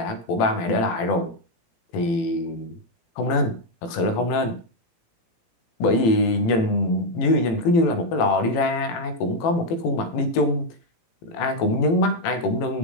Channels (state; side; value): late; right; 18 ms